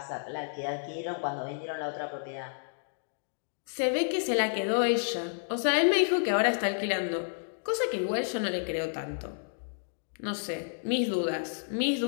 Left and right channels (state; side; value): silent; right; digital silence